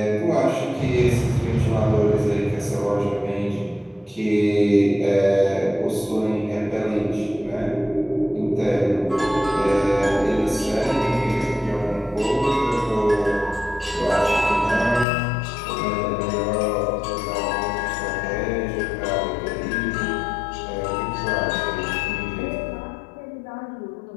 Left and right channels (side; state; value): right; drops out; at 15.1 s